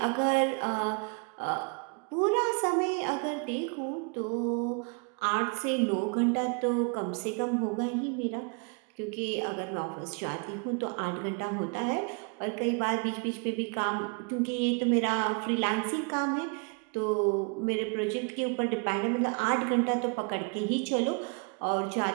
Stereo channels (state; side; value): quieter; left; 36.2 dB